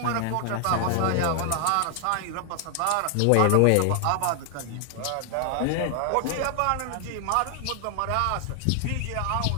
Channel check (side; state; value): both; different; correlation 0.00